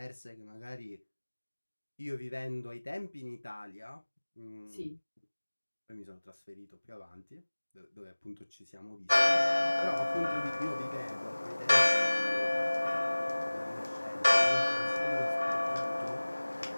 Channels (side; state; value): both; inverted; correlation -1.00